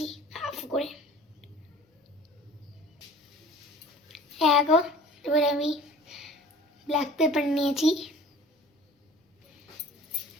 হাফ করে। এবার আমি ব্ল্যাক পেপার নিয়েছি,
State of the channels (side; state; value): both; normal; correlation 0.45